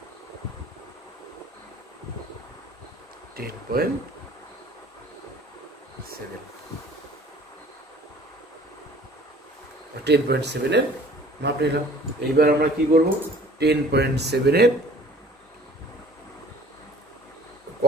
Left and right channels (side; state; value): both; normal; correlation 0.50